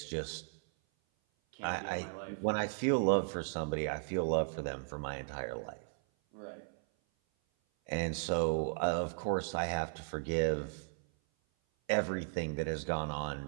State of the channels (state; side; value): silent; left; 54 dB below the other